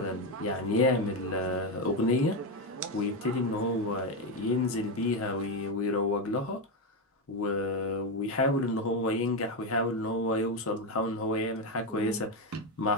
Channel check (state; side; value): normal; both; correlation 0.09